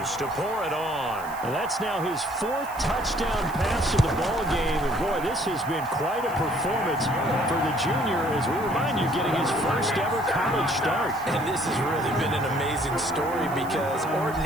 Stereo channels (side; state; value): right; noise; hiss, 19 dB below the sound